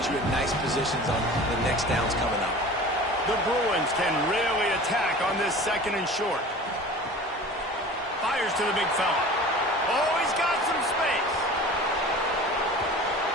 you in nice positions on the next downs coming up. The Bruins can really attack on this 2nd and short. Fires to the big fella. Oh, he's got some space.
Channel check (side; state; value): both; normal; correlation 0.40